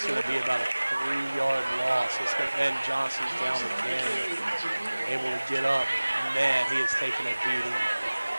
going to be about a 3-yard loss. And Johnson's down again, able to get up. Man, he has taken a beating.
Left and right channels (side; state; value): both; inverted; correlation -1.00